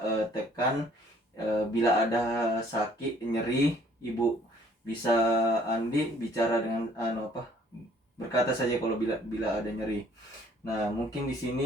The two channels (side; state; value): both; normal; correlation 0.59